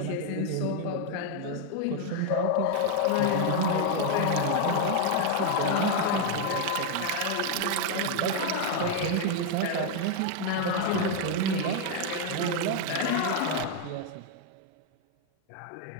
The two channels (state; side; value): different; both; correlation 0.00